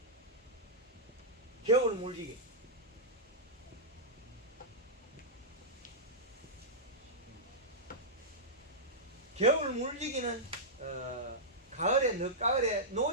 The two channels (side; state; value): both; normal; correlation -0.12